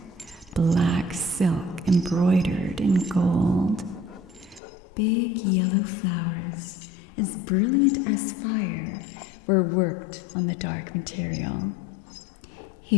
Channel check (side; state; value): right; drops out; at 4.6 s